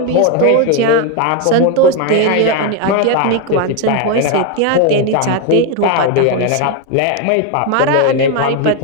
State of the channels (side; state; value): both; different; correlation 0.02